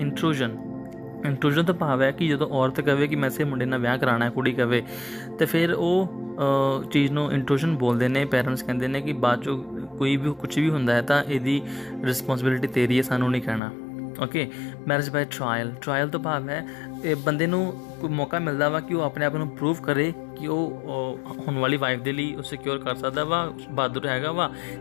ਤੋਂ ਭਾਵ ਹੈ ਕਿ ਜਦੋਂ ਔਰਤ ਕਹੇ ਕਿ ਮੈਂ ਇਸੇ ਮੁੰਡੇ ਨਾਲ ਵਿਆਹ ਕਰਾਉਣਾ ਹੈ, ਕੁੜੀ ਕਹੇ, ਤਾਂ ਫਿਰ ਉਹ ਚੀਜ਼ ਨੂੰ ਇੰਟਰੂਸ਼ਨ ਬੋਲਦੇ ਨੇ। ਪੈਰੈਂਟਸ ਕਹਿੰਦੇ ਨੇ ਕਿ ਬਾਅਦ 'ਚੋਂ ਕੋਈ ਵੀ ਕੁਛ ਵੀ ਹੁੰਦਾ ਹੈ ਤਾਂ ਇਹਦੀ ਰਿਸਪੌਂਸਿਬਿਲਿਟੀ ਤੇਰੀ ਹੈ, ਸਾਨੂੰ ਨਹੀਂ ਕਹਿਣਾ। Okay, marriage by trial. Trial ਤੋਂ ਭਾਵ ਹੈ ਇਹ ਬੰਦੇ ਨੂੰ ਕੋਈ ਮੌਕਾ ਮਿਲਦਾ ਵਾ ਕਿ ਉਹ ਆਪਣੇ ਆਪ ਨੂੰ ਪ੍ਰੂਵ ਕਰੇ ਕਿ ਉਹ ਹੋਣ ਵਾਲੀ ਵਾਈਫ ਦੇ ਲਈ ਉਹ ਸਿਕਿਉਰ ਕਰ ਸਕਦਾ ਵਾ, ਬਹਾਦਰ ਹੈਗਾ ਵਾ।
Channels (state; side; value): drops out; right; at 13.6 s